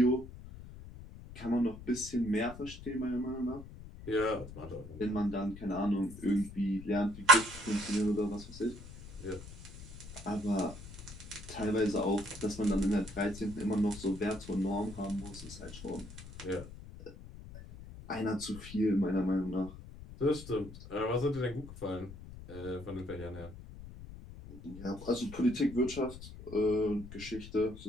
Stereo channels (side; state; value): left; noise; rumble, 14 dB below the sound